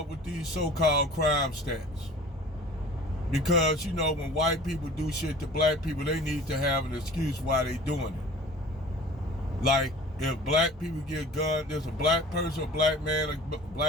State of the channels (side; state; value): both; normal; correlation 0.44